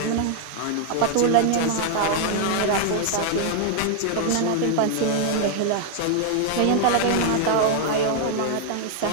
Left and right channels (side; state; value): both; different; correlation 0.00